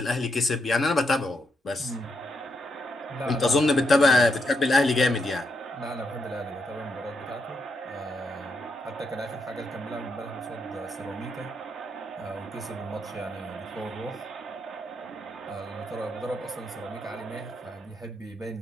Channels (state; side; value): normal; both; correlation 0.80